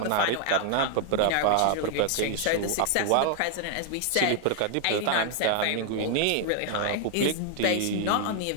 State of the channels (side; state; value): both; different; correlation 0.00